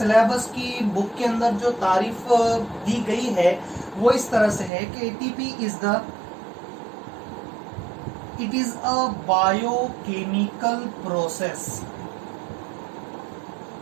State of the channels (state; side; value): drops out; left; at 4.7 s